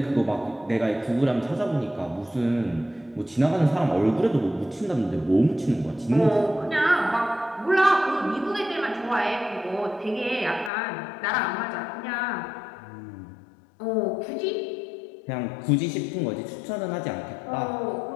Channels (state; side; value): drops out; right; at 10.7 s